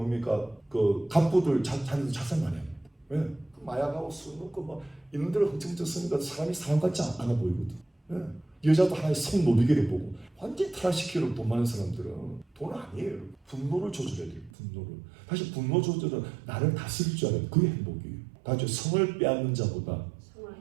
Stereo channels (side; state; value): left; drops out; at 14.5 s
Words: 갑부들 자기도 자살 많이 합니다. 왜? 마약하고 술 먹고 막 이런 데로 흥청증 쓰니까 사람이 사람 같지 않아 보이거든. 왜? 여자도 하나의 성노비계를 보고 완전히 타락시키려고 돈 많은 사람들은 돈 아니에요. 분노를 조절해야 돼요. 분노를. 다시 분노 조절은 나를 다스릴 줄 알아요. 그게 행복이에요. 다시 성을 빼앗는 자보다